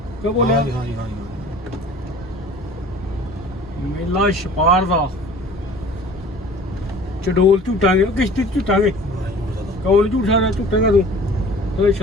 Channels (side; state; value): both; normal; correlation 0.45